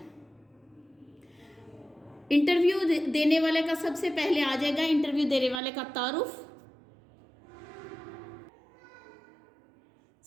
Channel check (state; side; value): drops out; left; at 5.6 s